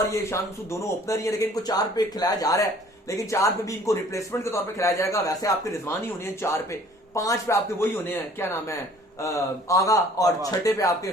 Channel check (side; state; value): both; normal; correlation 0.53